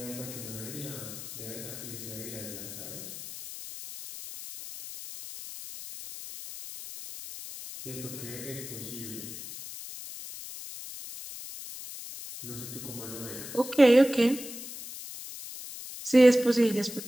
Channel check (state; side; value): noise; left; hiss, 11 dB below the sound